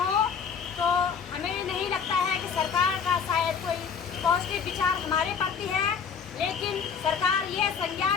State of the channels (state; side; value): quieter; right; 6.5 dB